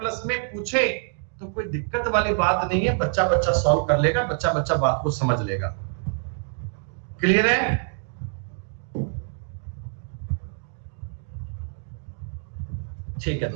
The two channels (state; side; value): silent; left; 61 dB below the other